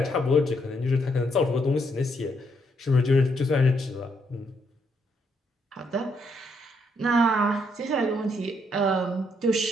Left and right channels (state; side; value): normal; both; correlation 0.74